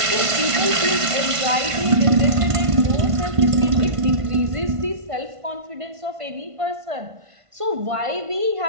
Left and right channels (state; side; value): late; left; 1.5 ms